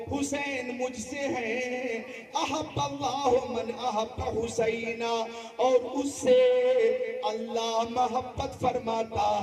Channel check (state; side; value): identical; both; correlation 1.00